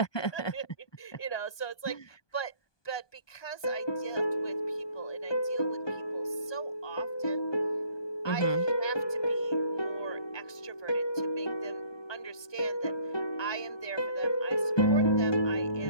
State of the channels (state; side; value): late; right; 1.2 ms